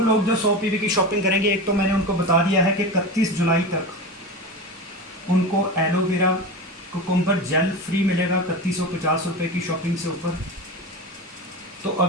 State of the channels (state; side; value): normal; both; correlation 0.25